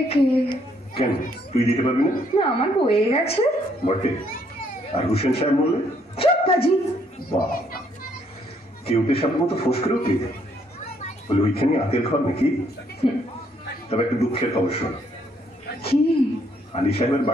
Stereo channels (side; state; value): both; normal; correlation 0.69